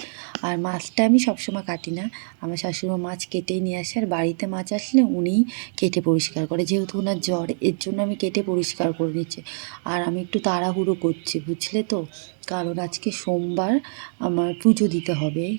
আর মাছটা আমি সবসময় কাটি না, আমার শাশুড়িমা মাছ কেটেই নিয়ে আসে, আর বাড়িতে মাছ আসলে উনিই কেটে পরিষ্কার করে, যেহেতু ওনার জ্বর, এর জন্য আমি কেটে পরিষ্কার করে নিচ্ছি। আর আমি একটু তাড়াহুড়ো করছি, বুঝলে তো, কারণ আজকে সোমবার, আমার পুজো দিতে হবে,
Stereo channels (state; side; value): silent; left; digital silence